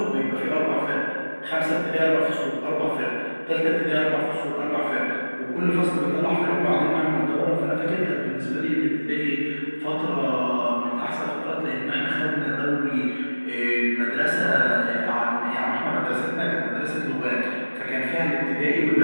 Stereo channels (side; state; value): both; inverted; correlation -1.00